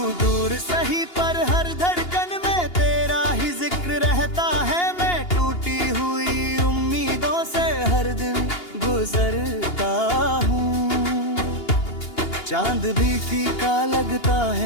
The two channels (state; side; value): late; right; 2.8 ms